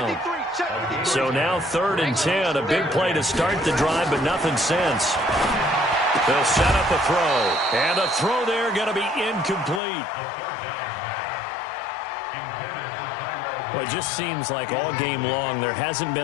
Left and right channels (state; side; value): drops out; right; at 9.8 s